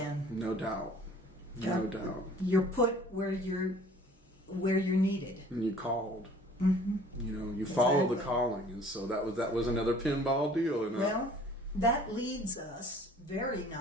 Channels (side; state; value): both; normal; correlation 0.51